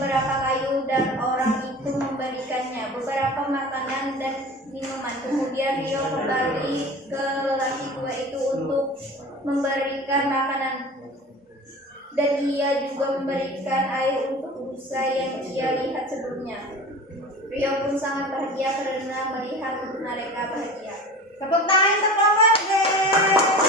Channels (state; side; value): normal; both; correlation 0.36